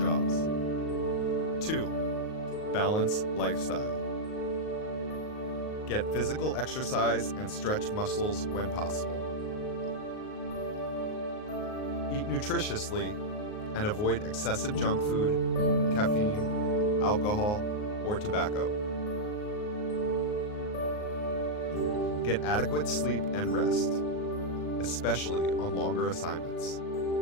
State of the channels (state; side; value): late; right; 38 ms